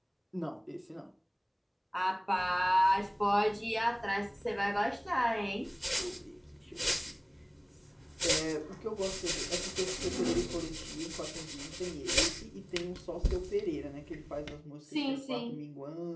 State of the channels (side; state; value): both; identical; correlation 1.00